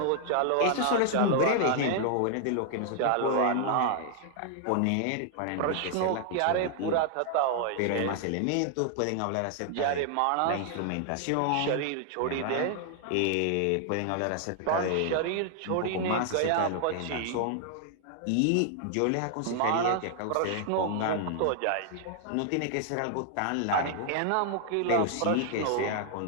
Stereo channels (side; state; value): both; different; correlation 0.00